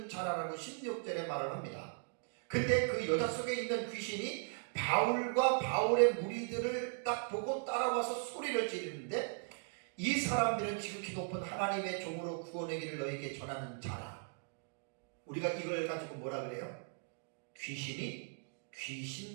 자라라고 16절에 말을 합니다. 근데 그 여자 속에 있는 귀신이 바울과 바울의 무리들을 딱 보고 따라와서 소리를 지르는데, 이 사람들은 지극히 높은 하나님의 종으로 구원의 길을 너에게 전하는 자라. 우리가 이걸 가지고 뭐라 그래요? 귀신이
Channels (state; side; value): silent; left; 52 dB below the other